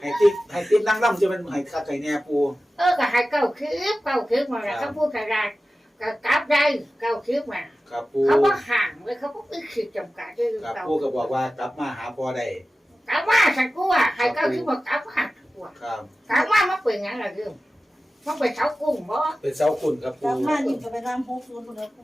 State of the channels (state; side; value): normal; both; correlation 0.95